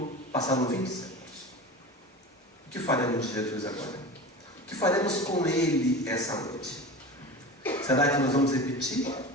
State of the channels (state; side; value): normal; both; correlation 0.32